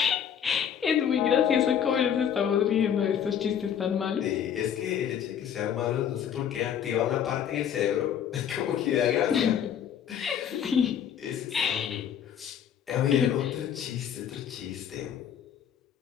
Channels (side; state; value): right; quieter; 8.7 dB